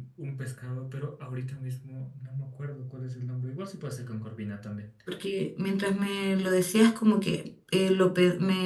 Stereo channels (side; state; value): both; identical; correlation 1.00